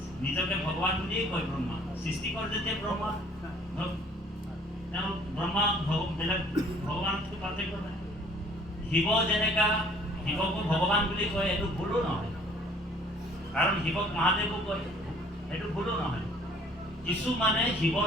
নিজকে ভগৱান বুলিয়েই কয় ব্ৰহ্মা। সৃষ্টিকৰ যেতিয়া ব্ৰহ্মা, তেওঁ ব্ৰহ্মা বেলেগ ভগৱানতকৈ পাৰ্থক্য নাই। শিৱ যেনেকা শিৱকো ভগৱান বুলি কয়, এইটো ভুলো নহয়, কাৰণ শিৱক মহাদেৱো কয়, সেইটো ভুলো নহয়। কিছু মানে শিৱৰ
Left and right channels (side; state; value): both; normal; correlation 0.55